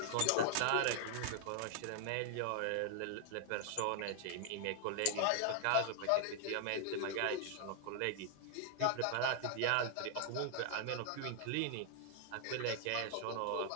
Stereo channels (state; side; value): different; both; correlation 0.00